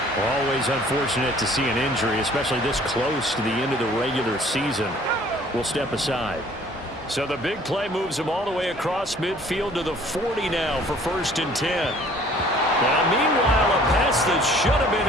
Always unfortunate to see an injury, especially this close to the end of the regular season. We'll step aside. So the big play moves him all the way across midfield to the 40 now for 1st and 10. Now, meanwhile, a pass that should have been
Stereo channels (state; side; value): normal; both; correlation 0.55